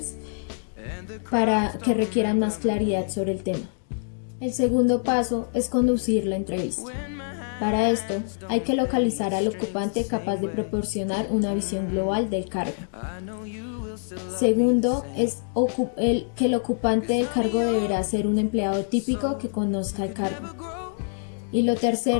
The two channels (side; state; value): right; silent; digital silence